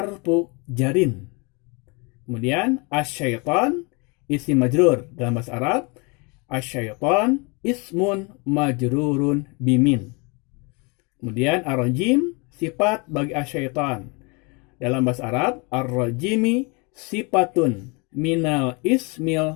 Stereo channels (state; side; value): quieter; right; 30.5 dB